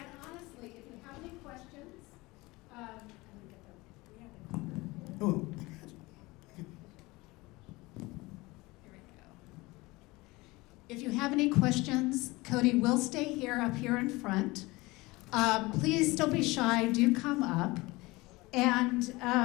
honestly, if you have any questions, Oh. if you have any questions, Kodey will stay here up here in front. Please don't be shy. Do come up. And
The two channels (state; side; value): quieter; right; 22.1 dB